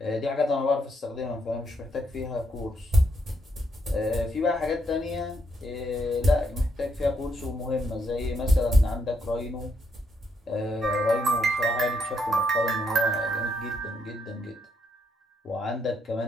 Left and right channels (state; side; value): normal; both; correlation 0.76